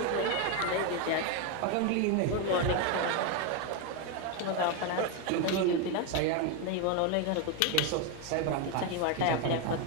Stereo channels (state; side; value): different; both; correlation 0.02